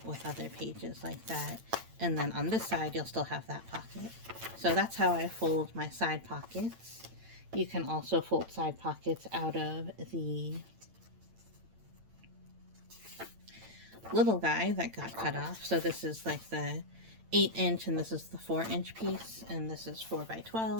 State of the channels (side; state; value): left; late; 8.9 ms